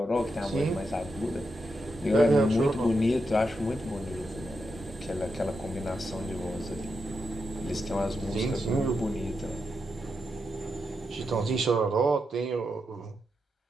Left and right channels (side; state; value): both; normal; correlation 0.85